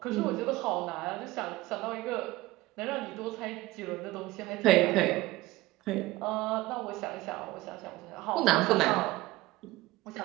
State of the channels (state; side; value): quieter; left; 18.6 dB